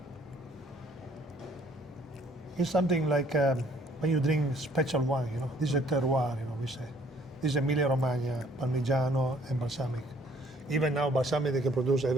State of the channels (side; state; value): both; normal; correlation 0.60